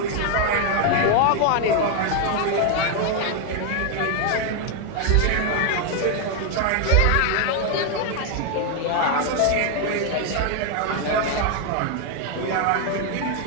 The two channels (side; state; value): both; different; correlation 0.01